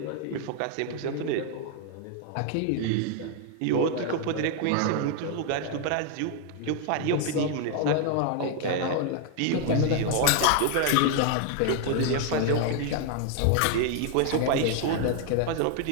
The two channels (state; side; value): different; both; correlation 0.00